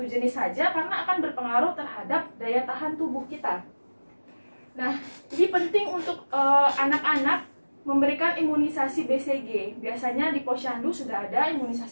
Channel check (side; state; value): both; inverted; correlation -1.00